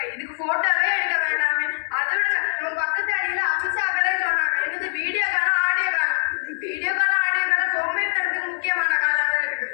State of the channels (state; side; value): silent; right; digital silence